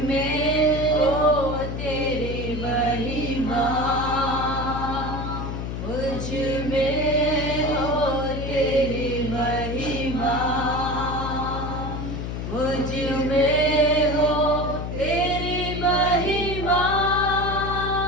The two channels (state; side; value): noise; left; hum, 5 dB below the sound